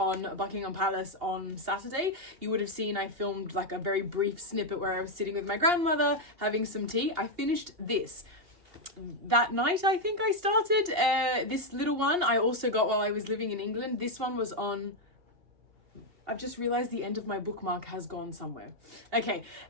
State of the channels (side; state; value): left; late; 2.8 ms